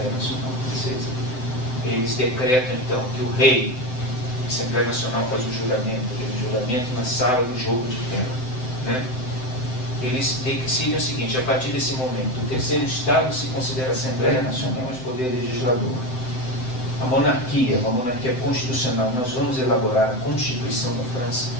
Nacional Francesa, eles decretam então que o rei, a Assembleia Nacional faz o juramento, aquele juramento na sala do jogo de terra, né? Eles decidem o seguinte: a partir desse momento, o terceiro Estado se considera a Assembleia Nacional, mas poder legislador. A monarquia, uma monarquia constitucional, nós vamos elaborar a Constituição da França.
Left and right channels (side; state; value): right; late; 7.8 ms